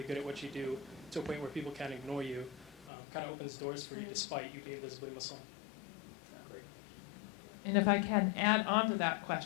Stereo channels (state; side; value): drops out; right; at 2.9 s